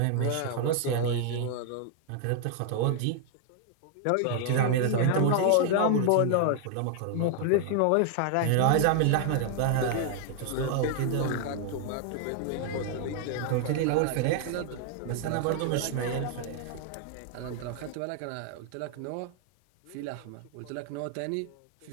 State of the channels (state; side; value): different; both; correlation 0.00